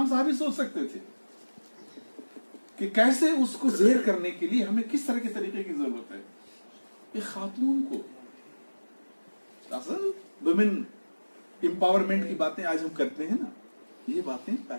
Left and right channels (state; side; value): inverted; both; correlation -1.00